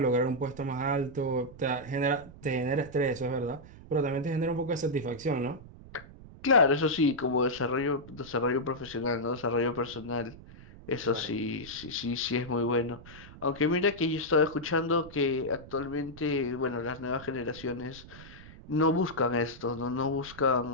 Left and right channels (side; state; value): right; noise; rumble, 18 dB below the sound